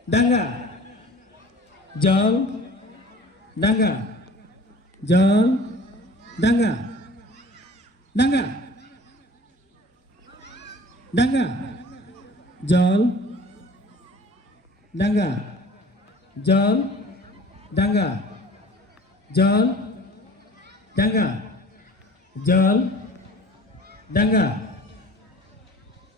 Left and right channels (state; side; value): normal; both; correlation 0.46